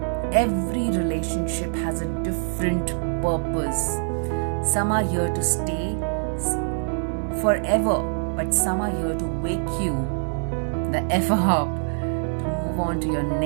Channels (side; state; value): left; silent; 57 dB below the other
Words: Every relationship has a different purpose. Some are here to stay forever, but some are here to wake you the F up to move on to your